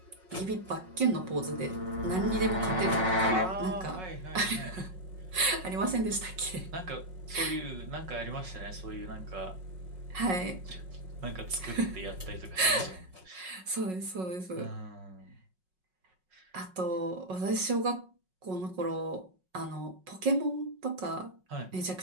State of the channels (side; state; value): left; late; 5.4 ms